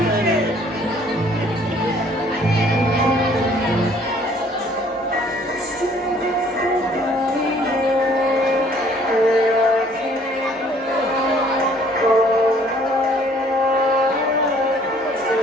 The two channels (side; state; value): both; normal; correlation 0.59